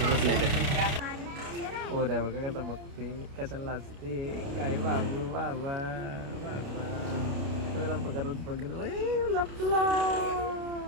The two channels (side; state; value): left; late; 29 ms